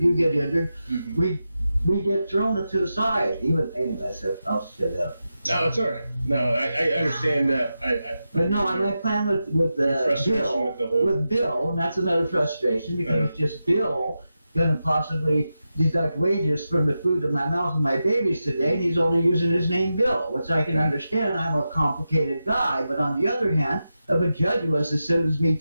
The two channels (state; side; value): inverted; both; correlation -0.90